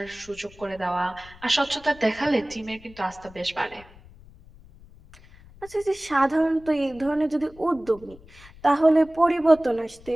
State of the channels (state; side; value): noise; left; rumble, 23 dB below the sound